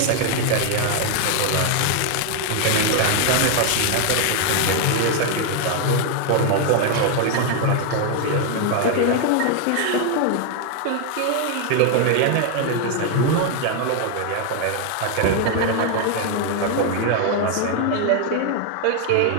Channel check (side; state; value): both; different; correlation 0.01